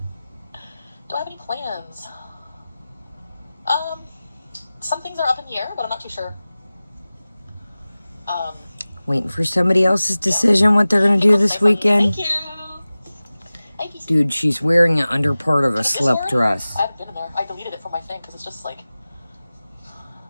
Do I have any plans? Some things are up in the air, but I'm not too sure. Waiting for somebody else's decision what they're going to do this weekend. Thank you. Dude, she's wearing an under part of a slip dress. I haven't been in there. I deleted it from my thing because it's just like,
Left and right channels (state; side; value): inverted; both; correlation -0.97